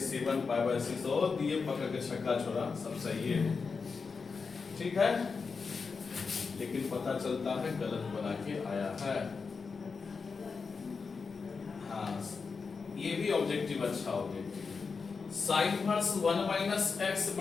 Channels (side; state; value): right; quieter; 5.0 dB